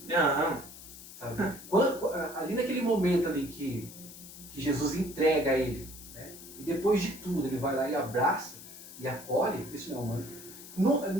Aham. Sabe? Ali naquele momento ali que Jesus entrega a ele, né, e depois de tudo ele vai lá e abraça e acolhe, isso não é humano.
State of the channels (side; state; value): left; noise; hiss, 15 dB below the sound